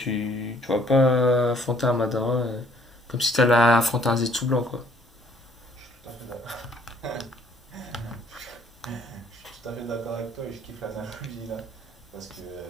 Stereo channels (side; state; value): both; normal; correlation 0.62